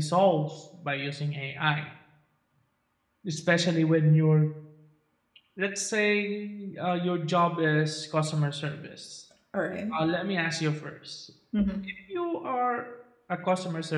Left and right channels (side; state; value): both; identical; correlation 1.00